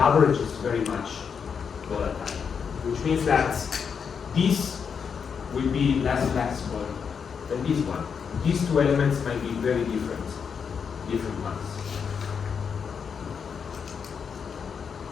average is very much volatile. Which means that this will be less flexible than this one. These two elements might be very different ones.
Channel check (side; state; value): right; quieter; 6.5 dB